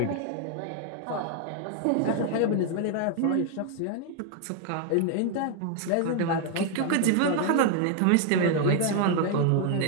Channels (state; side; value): different; both; correlation 0.00